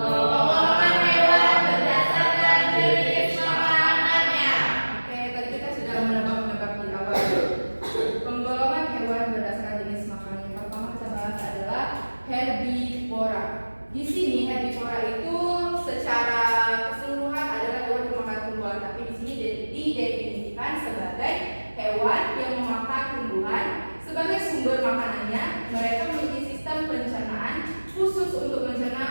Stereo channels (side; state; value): both; inverted; correlation -1.00